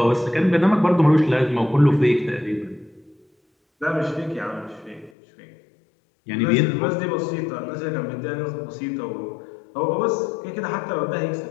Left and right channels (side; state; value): right; drops out; at 5.1 s